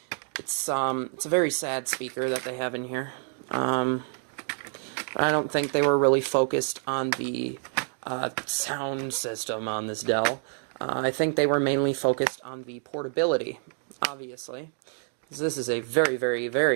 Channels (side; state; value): left; silent; 60 dB below the other